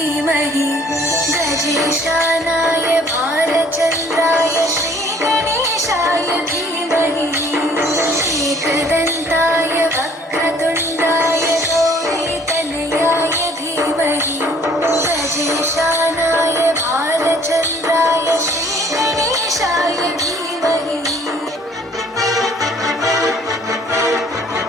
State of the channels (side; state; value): both; normal; correlation 0.57